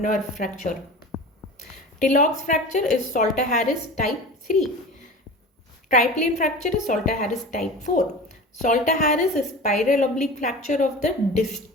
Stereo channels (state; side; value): normal; both; correlation 0.34